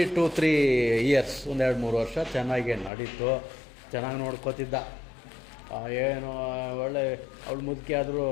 2-3 years, 1-2-3 ವರ್ಷ ಚೆನ್ನಾಗೇ ನಡೀತು. ಚೆನ್ನಾಗಿ ನೋಡ್ಕೋತಿದ್ದ. ಏನು ಒಳ್ಳೆ ಅವಳು ಮುದುಕಿ ಆದರೂ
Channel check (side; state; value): right; drops out; at 2.9 s